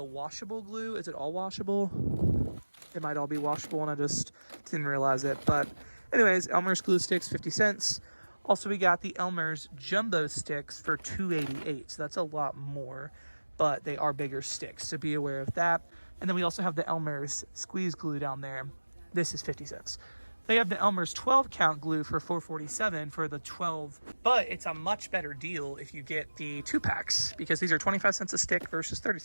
washable glue. Is it all washable? It might all be washable and I just didn't realize it. But anyways, Elmer's glue sticks, 50 cents. Also, we got the Elmer's jumbo sticks for $2.88. So that's a lot more, but they are bigger sticks. So be aware of that. And then we also have the Elmer's squeeze glue down there. This is 50 cents. They have the Elmer's 12 count glue for $4.47 for the 12, but it's a much better deal if you get the 2-packs because these are 25 cents a stick versus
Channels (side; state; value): both; inverted; correlation -1.00